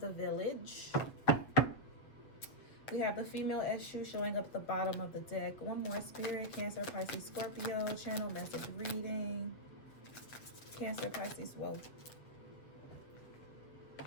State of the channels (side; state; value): right; late; 7.5 ms